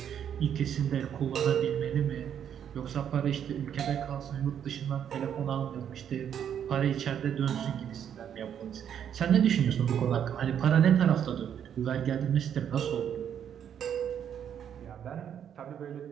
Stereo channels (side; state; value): left; quieter; 9.0 dB